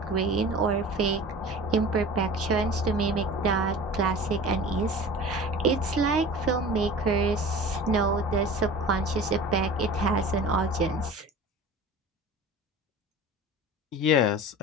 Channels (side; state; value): both; normal; correlation 0.38